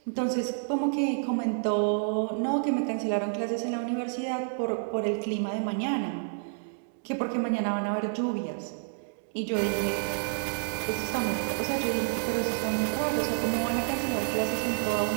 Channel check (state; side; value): silent; left; digital silence